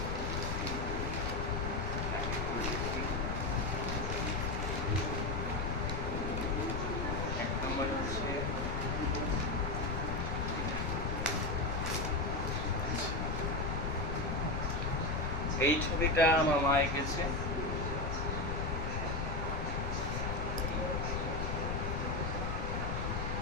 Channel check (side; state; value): left; noise; rumble, 1 dB below the sound